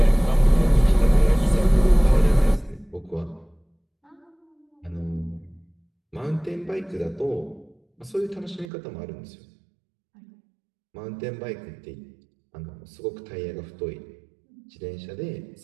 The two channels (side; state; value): left; drops out; at 8.7 s